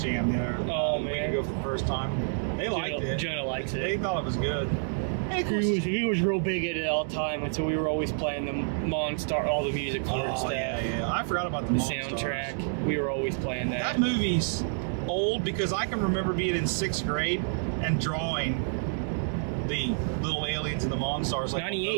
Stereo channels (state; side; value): silent; left; digital silence